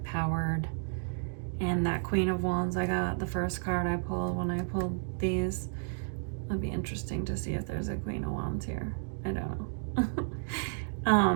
And that Queen of Wands I got, the first card I pulled when I pulled these, it'd be interesting to see if there's a Queen of Wands here. I don't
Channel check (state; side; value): silent; left; digital silence